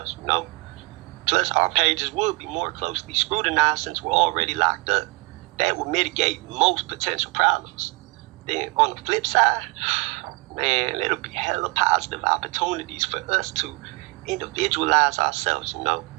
Plus, our pages would be more closely scrutinized since we're already locked up. That would mitigate most potential problems. Then on the flip side, man, it'll be hella positive opportunities for us to individualize ourselves,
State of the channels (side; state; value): left; quieter; 24.6 dB